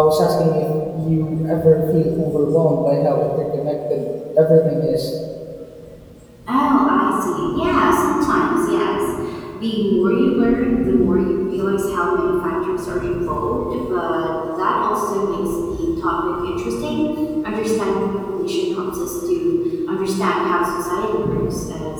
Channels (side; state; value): both; identical; correlation 1.00